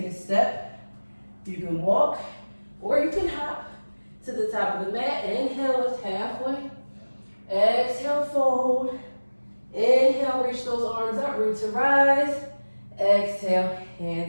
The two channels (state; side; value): inverted; both; correlation -1.00